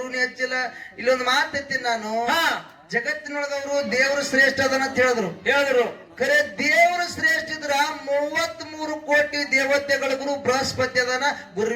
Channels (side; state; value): both; identical; correlation 1.00